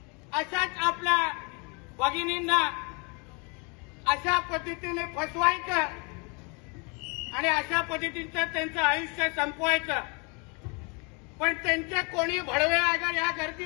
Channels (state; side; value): quieter; right; 32.4 dB